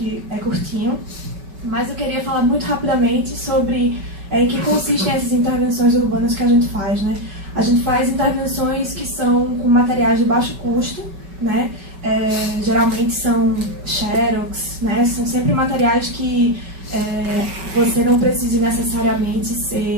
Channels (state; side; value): late; left; 5.2 ms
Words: é curtinho. Mas eu queria falar muito rapidamente sobre em que consistem essas intervenções urbanas que a gente faz, né? A gente faz intervenções que são com materiais de baixo custo, né? Geralmente são xerox, né? São sempre materiais que você não precise necessariamente